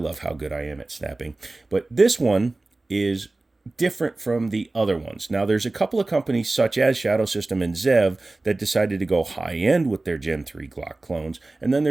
how good I am at snapping. But this one is different from the other ones. Now, there's a couple of companies such as Shadow Systems and Zev that decided to go high-end with their Gen 3 Glock clones, and then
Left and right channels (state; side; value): quieter; left; 3.1 dB